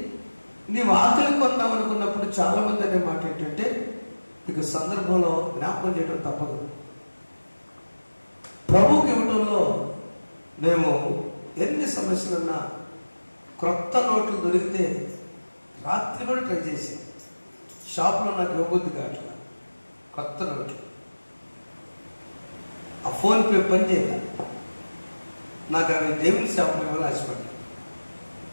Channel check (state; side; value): inverted; both; correlation -1.00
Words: నీవు ఆకలి కొందాం అనుకున్నప్పుడు చాలా మంది అనే మాట ఏంటంటే ఇక సందర్భంలో జ్ఞాపకం చేయడం తప్పదు. ప్రభువుకి ఇవ్వడంలో మేము ఎన్ని సమస్యలున్నా క్రొత్త నోట్లు దొరికితే రాత్రి కూడా ట్రై చేసాం. షాప్లో నాకు ఇవ్వబుద్ధి కావట్లా కొత్త నోట్లు. ఆ ఫోన్పే పని చేయాలి. నాకు అవి దేవుని షాప్లో ఇవ్వాలని ఆశపడ్డా.